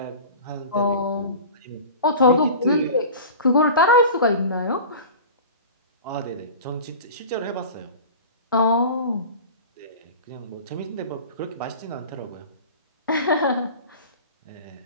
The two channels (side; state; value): both; inverted; correlation -0.36